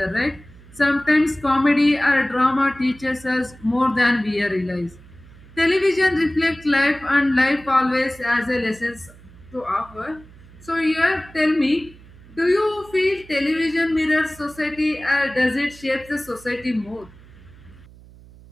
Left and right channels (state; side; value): noise; right; hum, 22 dB below the sound